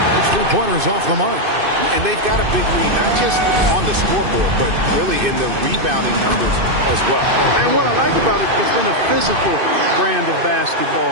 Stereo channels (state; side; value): late; left; 2.6 ms